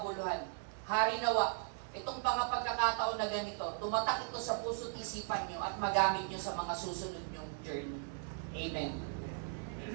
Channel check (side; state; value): left; silent; 53 dB below the other